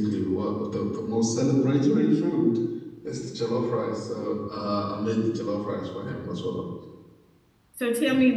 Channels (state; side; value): identical; both; correlation 1.00